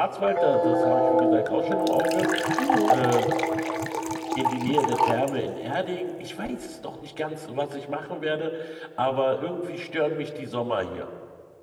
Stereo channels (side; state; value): both; identical; correlation 1.00